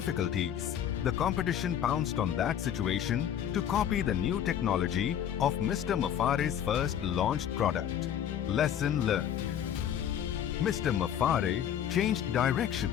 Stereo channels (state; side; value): quieter; right; 9.7 dB